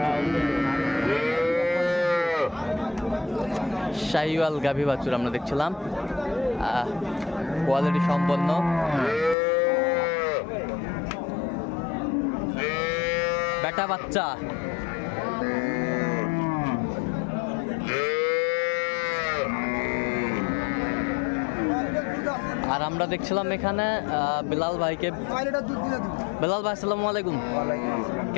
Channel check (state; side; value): drops out; right; at 9.3 s